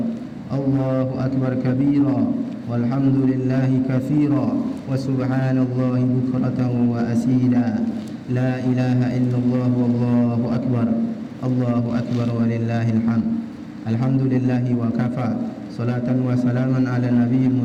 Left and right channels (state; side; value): identical; both; correlation 1.00